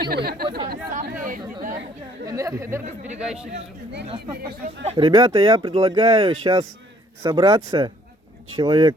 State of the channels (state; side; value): normal; both; correlation 0.62